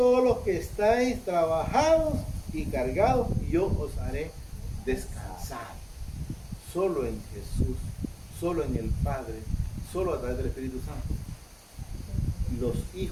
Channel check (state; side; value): identical; both; correlation 1.00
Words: los que estáis trabajados y cargados, y yo os haré descansar. Solo en Jesús, solo en el Padre, solo a través del Espíritu Santo. Los